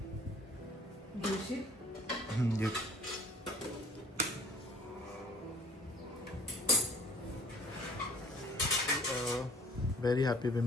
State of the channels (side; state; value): both; normal; correlation 0.53